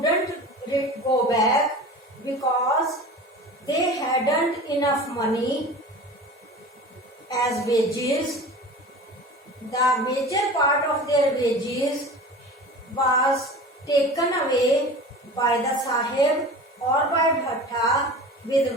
go back because they hadn't enough money as wages. The major part of their wages was taken away by the Sahib or by Bhatta with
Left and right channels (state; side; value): normal; both; correlation 0.36